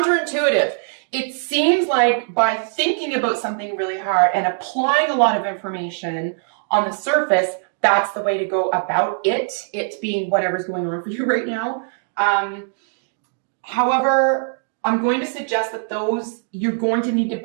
It seems like by thinking about something really hard and applying a lot of information on the surface, that's the way to go about it being whatever's going on for you right now. However, I'm going to suggest that you're going to need to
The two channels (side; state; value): left; silent; digital silence